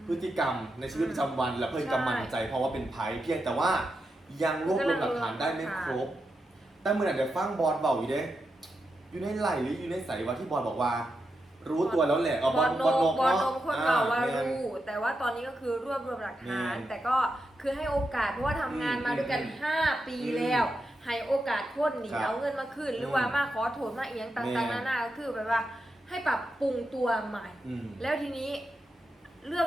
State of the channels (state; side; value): normal; both; correlation 0.87